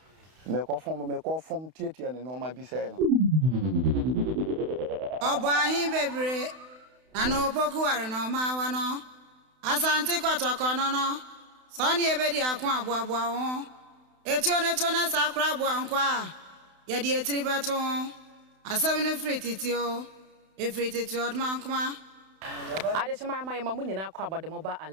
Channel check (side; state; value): left; late; 31 ms